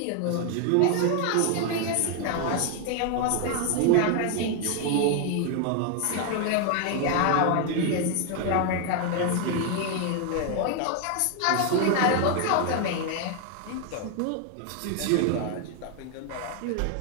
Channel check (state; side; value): different; both; correlation 0.01